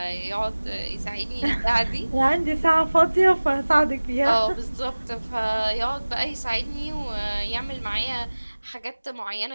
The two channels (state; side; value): inverted; both; correlation -1.00